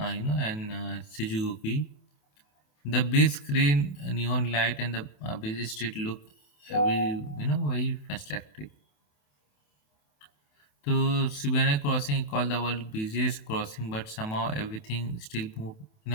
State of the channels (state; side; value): late; right; 28 ms